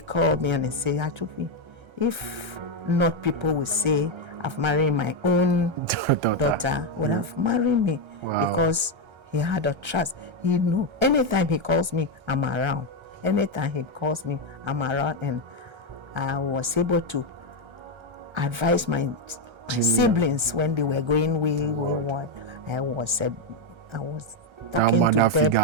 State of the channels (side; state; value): left; late; 1.3 ms